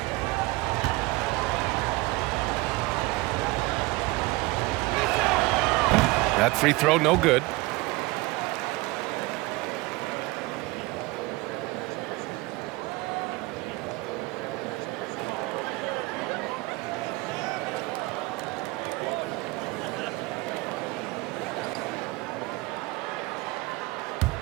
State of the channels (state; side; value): quieter; left; 22.1 dB